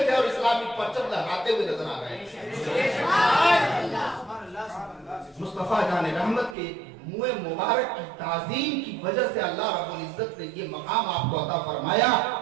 थे और इस्लामी परचम लहराते हुए नजर आ रहे हैं। मुस्तफा जाने रहमत के मुँह मुबारक की ताज़ीम की वजह से अल्लाह रब्बुल इज्जत ने ये मकाम आपको अता फरमाया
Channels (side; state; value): left; drops out; at 6.6 s